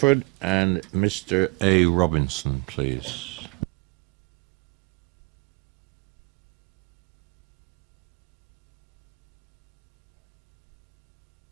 and Mr. A. Robinson, please.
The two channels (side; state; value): left; quieter; 27.9 dB